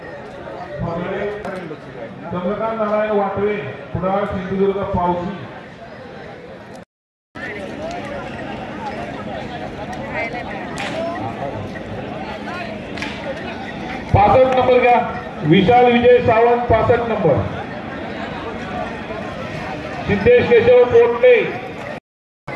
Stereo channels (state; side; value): identical; both; correlation 1.00